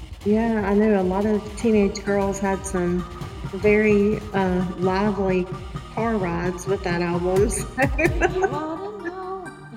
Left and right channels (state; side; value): identical; both; correlation 1.00